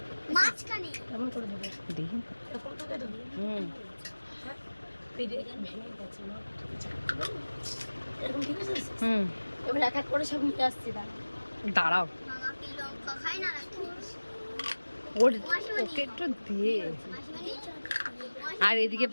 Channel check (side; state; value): both; inverted; correlation -1.00